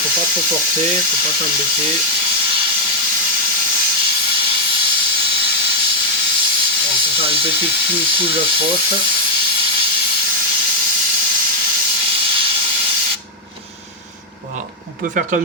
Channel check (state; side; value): normal; both; correlation 0.00